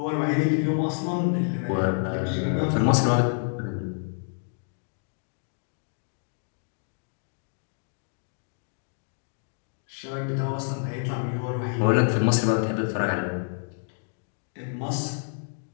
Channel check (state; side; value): silent; right; digital silence